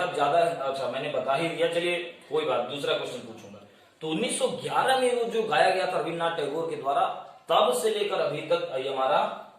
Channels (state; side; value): identical; both; correlation 1.00